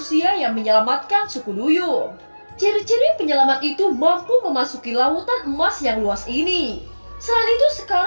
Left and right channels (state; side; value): inverted; both; correlation -1.00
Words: yang menyelamatkan suku Duyung. Ciri-ciri penyelamat itu mampu memasuki lautan emas yang luas ini. Selain itu